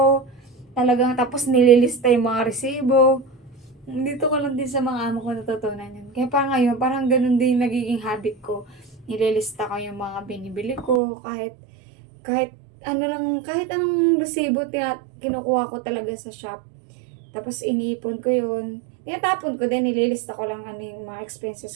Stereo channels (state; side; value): drops out; left; at 11.0 s